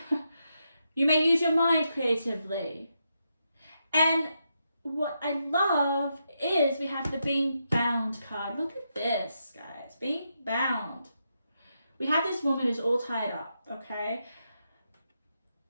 you may use your mind creatively. And what I love is we have the being bound card. Look at this, guys, being bound. We have this woman who's all tied up, okay?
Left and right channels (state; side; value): inverted; both; correlation -0.83